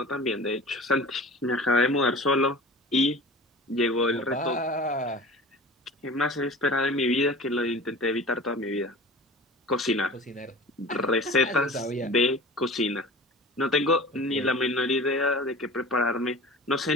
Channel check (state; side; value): normal; both; correlation 0.39